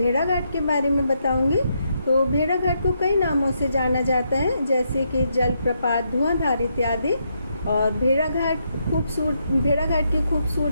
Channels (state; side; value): inverted; both; correlation -0.79